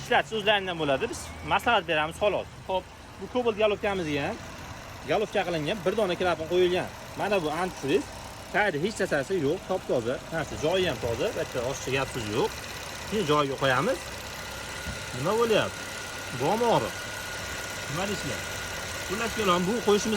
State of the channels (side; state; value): both; identical; correlation 1.00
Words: Ishlatish o'zlaridan bo'ladi. Biz maslahat beramiz xolos. Xo'p, bu Cobalt galofkamizga ham galofka qilingan bir dona klapan qo'yilgan. Mana bu antifriz. Tayyorda hech narsasi yo'q, top-toza. Narsa joyi ham toza, bitta oshcha gap so'z yo'q. Shuni joyiga qo'yamiz. Nima bo'lyapti? Bo'mori. Nima deysizlar? Xullas kelam, bu